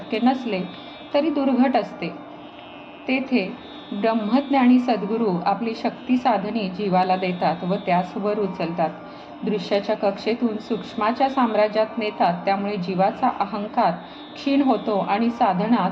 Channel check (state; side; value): identical; both; correlation 1.00